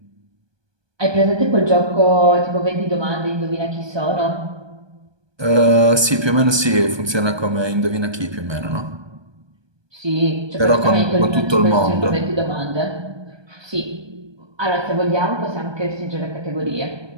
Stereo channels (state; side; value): late; left; 1.2 ms